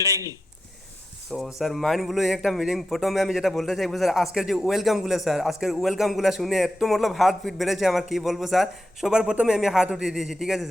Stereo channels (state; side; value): normal; both; correlation 0.88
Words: তো স্যার মাইন্ড ব্লোয়িং একটা মিটিং। প্রথমে আমি যেটা বলতে চাইবো স্যার, আজকের যে ওয়েলকামগুলো স্যার, আজকের ওয়েলকামগুলো শুনে একটু মতলব হার্ট বিট বেড়েছে আমার, কি বলবো স্যার। সবার প্রথমে আমি হাত উঠিয়ে দিয়েছি, ঠিক আছে